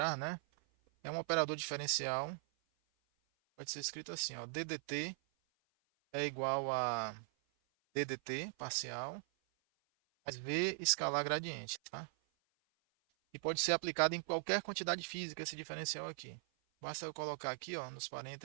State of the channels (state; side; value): silent; left; 51 dB below the other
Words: né? É um operador diferencial, pode ser escrito assim, ó, ddt é igual a ddt parcial mais v escalar gradiente, tá? E pode ser aplicado em qualquer quantidade física esse diferencial aqui. Basta eu colocar aqui, ó, nos